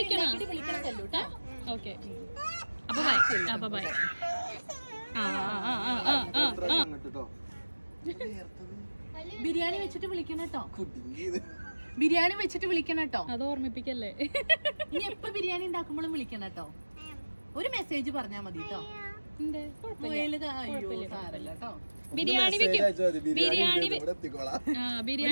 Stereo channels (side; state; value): both; inverted; correlation -1.00